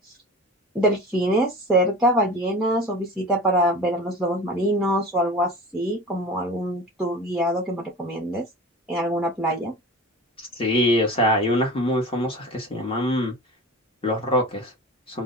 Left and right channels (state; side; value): normal; both; correlation 0.35